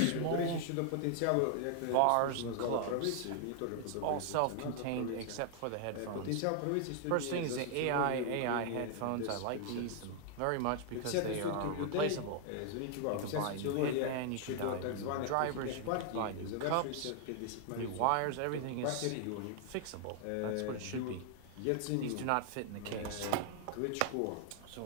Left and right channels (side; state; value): both; different; correlation 0.00